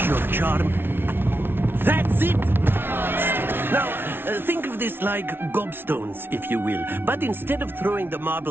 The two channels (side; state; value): left; late; 0.11 ms